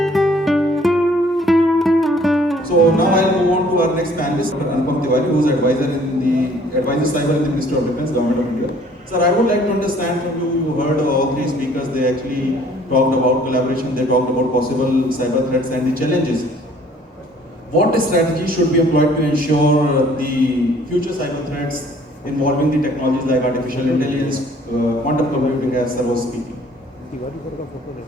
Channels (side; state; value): both; normal; correlation 0.57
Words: now I'll move on to our next panelist, Dr. Anupam Tiwari, who is advisor cyber in the Ministry of Defence, Government of India. Sir, I would like to understand from you. You heard all three speakers. They actually talked about collaboration. They talked about possible cyber threats and the challenges. What strategy should be employed to ensure the future cyber threats involving the technologies like artificial intelligence, quantum computing, as sir was speaking?